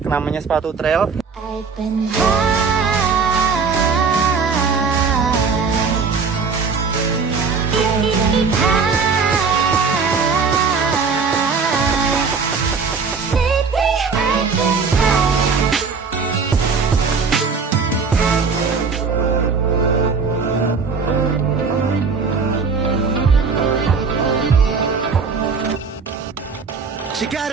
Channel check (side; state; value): left; quieter; 5.1 dB